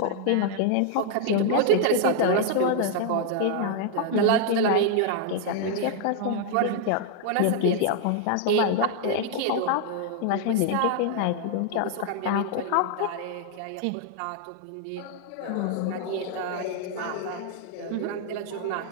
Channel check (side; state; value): both; different; correlation 0.00